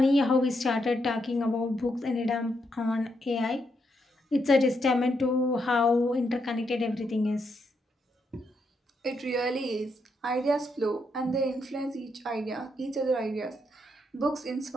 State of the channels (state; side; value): normal; both; correlation 0.79